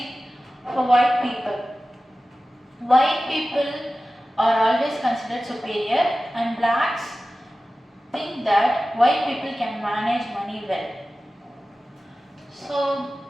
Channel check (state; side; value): normal; both; correlation 0.95